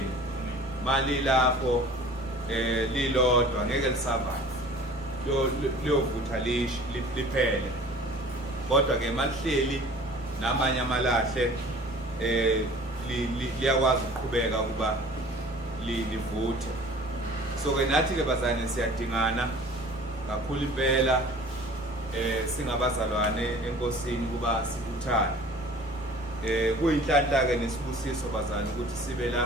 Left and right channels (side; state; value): both; normal; correlation 0.46